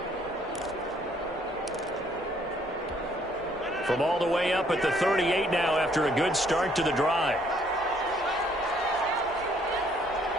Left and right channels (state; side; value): normal; both; correlation 0.65